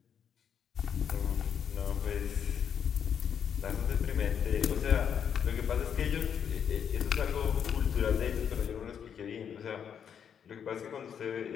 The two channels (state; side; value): quieter; right; 8.0 dB